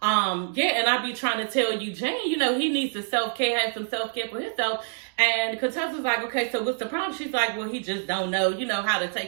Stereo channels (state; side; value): silent; left; 61 dB below the other